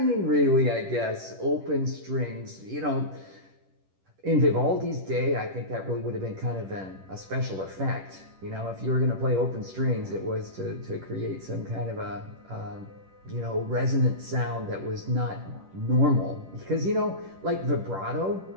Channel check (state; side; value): late; left; 10 ms